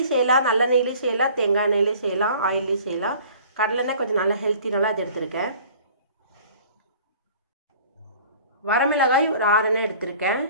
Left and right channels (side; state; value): both; inverted; correlation -0.49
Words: செய்யலாம், நல்லெண்ணெயிலையும் செய்யலாம், தேங்காய் எண்ணெயிலையும் செய்யலாம், ஆயிலையும் செய்யலாம். கடலெண்ணெய் கொஞ்சம் நல்லா ஹெல்த்தினால அது எடுத்திருக்கேன். வரமிளகாய் ஒரு 6 எண்ணெய் எடுத்திருக்கேன்.